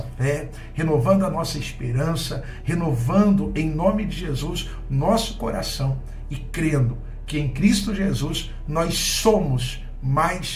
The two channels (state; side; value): identical; both; correlation 1.00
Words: fé, renovando a nossa esperança, renovando em nome de Jesus nosso coração e crendo que em Cristo Jesus nós somos